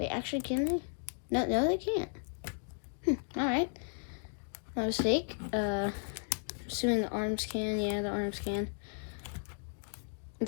actually, can they? No, they can't. Alright. My mistake. Assuming the arms can. Yeah, the arms can.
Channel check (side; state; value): right; silent; digital silence